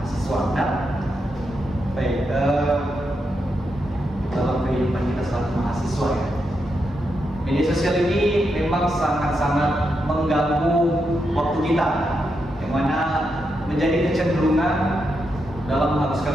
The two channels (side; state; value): both; normal; correlation 0.84